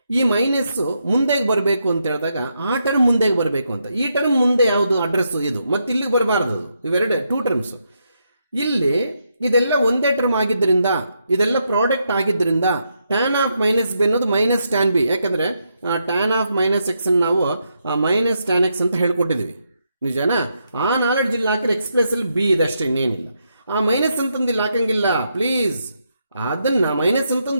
ಈ ಮೈನಸ್ಸು ಮುಂದೆಗೆ ಬರಬೇಕು ಅಂತ ಹೇಳಿದಾಗ ಆ ಟರ್ಮ್ ಮುಂದೆಗೆ ಬರಬೇಕು ಅಂತ. ಈ ಟರ್ಮ್ ಮುಂದೆ ಯಾವುದು ಅಡ್ರೆಸ್ಸು ಇದು, ಮತ್ತು ಇಲ್ಲಿಗೆ ಬರಬಾರ್ದು. ಇವೆರಡು 2 ಟರ್ಮ್ಸು. ಇಲ್ಲಿ ಇದೆಲ್ಲ ಒಂದೇ ಟರ್ಮ್ ಆಗಿದ್ದರಿಂದ, ಇದೆಲ್ಲ ಪ್ರಾಡಕ್ಟ್ ಆಗಿದ್ದರಿಂದ ಟ್ಯಾನ್ ಆಫ್ ಮೈನಸ್ ಬಿ ಅನ್ನೋದು ಮೈನಸ್ ಟ್ಯಾನ್ ಬಿ. ಯಾಕಂದರೆ ಟ್ಯಾನ್ ಆಫ್ ಮೈನಸ್ ಎಕ್ಸ್ ನಾವು ಮೈನಸ್ ಟ್ಯಾನ್ ಎಕ್ಸ್ ಅಂತ ಹೇಳ್ಕೊಟ್ಟಿದ್ದೀವಿ, ನಿಜನಾ? ಆ ನಾಲೆಡ್ಜ್ ಇಲ್ಲಿ ಹಾಕಿದ್ರೆ ಎಕ್ಸ್ಪ್ರೆಸ್ಸಲ್ಲಿ ಬಿ ಇದೆ ಅಷ್ಟೇ, ಇನ್ನೇನಿಲ್ಲ. ಆ ಮೈನಸ್ ಅಂತಂದು ಇಲ್ಲಿ ಹಾಕಂಗಿಲ್ಲ ಪ್ಲೀಸ್. ಅದನ್ನು ಮೈನಸ್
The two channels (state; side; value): inverted; both; correlation -0.81